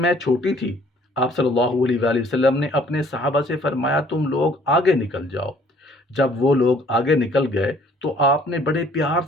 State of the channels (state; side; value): normal; both; correlation 0.59